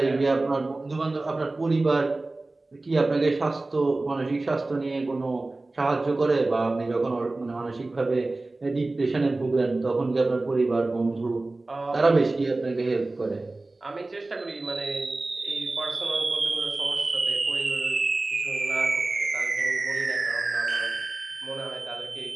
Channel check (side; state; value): left; quieter; 3.1 dB